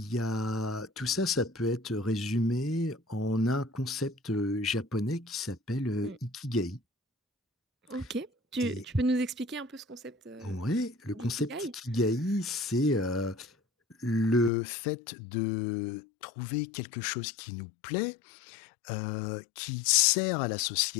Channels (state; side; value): drops out; right; at 14.5 s